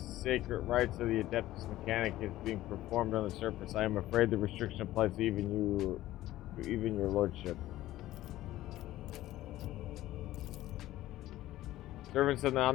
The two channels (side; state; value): right; quieter; 15.2 dB